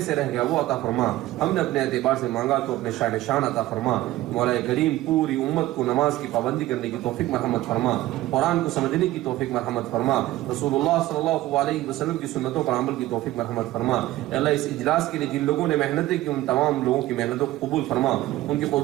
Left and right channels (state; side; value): quieter; left; 16.1 dB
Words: سے رہ گیا وہ عطا فرما. ہم نے اپنے اعتبار سے مانگا تو اپنے شان شان عطا فرما. مولا کریم پوری امت کو نماز کی پابندی کرنے کی توفیق مرحمت فرما, قرآن کو سمجھنے کی توفیق مرحمت فرما, رسول اللہ صلی اللہ علیہ وسلم کی سنتوں پر عمل کی توفیق مرحمت فرما. اے اللہ اس اجلاس کے لیے جن لوگوں نے محنتیں کی ان تمام لوگوں کی محنتوں کو قبول فرما, ان کی